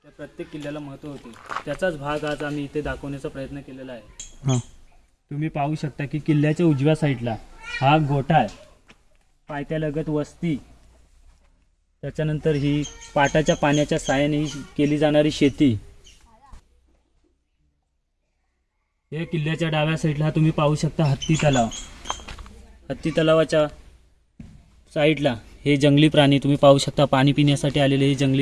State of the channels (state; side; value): identical; both; correlation 1.00